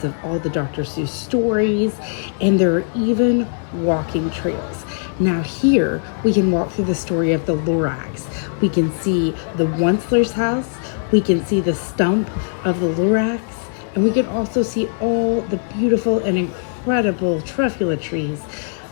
of all the Dr. Seuss stories, and there are even walking trails. Now here, we can walk through the story of the Lorax. We can see the Onceler's house, we can see the stump of the Lorax, and we can also see all the beautiful and incredible truffula trees.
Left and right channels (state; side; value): silent; right; 66 dB below the other